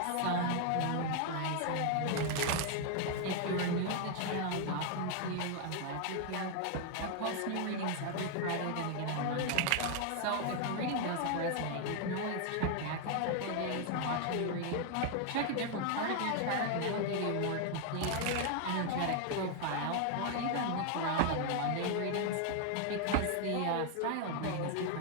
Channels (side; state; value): both; different; correlation 0.00